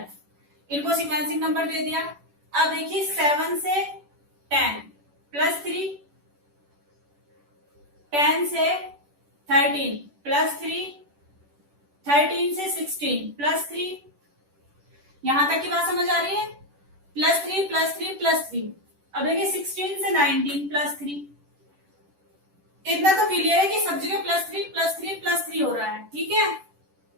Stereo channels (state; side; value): late; left; 10 ms